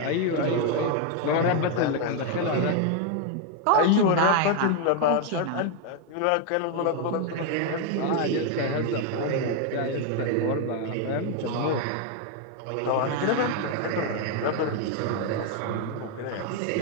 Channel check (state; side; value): different; both; correlation 0.01